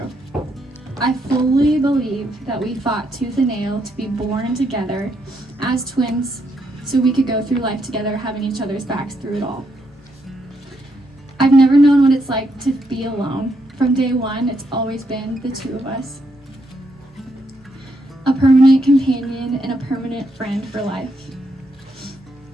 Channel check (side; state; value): both; normal; correlation 0.77